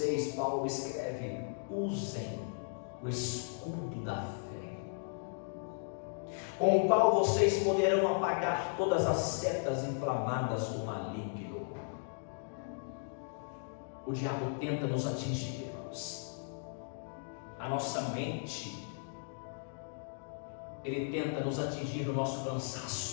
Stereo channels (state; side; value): silent; right; digital silence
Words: Paulo escreve: usem o escudo da fé, com o qual vocês poderão apagar todas as setas inflamadas do maligno. O diabo tenta nos atingir, irmãos. A nossa mente, ele tenta nos atingir no nosso